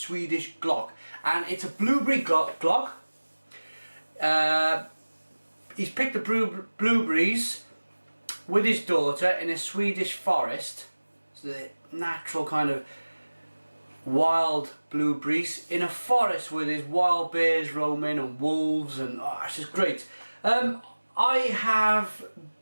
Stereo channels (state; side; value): inverted; both; correlation -1.00